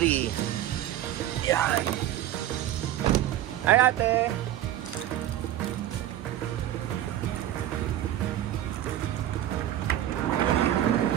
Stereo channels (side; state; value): left; quieter; 12.5 dB